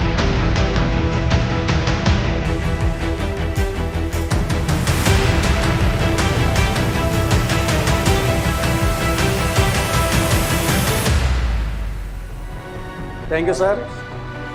థ్యాంక్ యూ సార్.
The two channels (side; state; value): both; identical; correlation 1.00